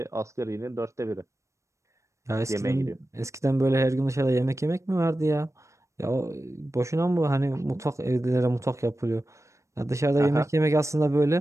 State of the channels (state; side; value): late; left; 0.15 ms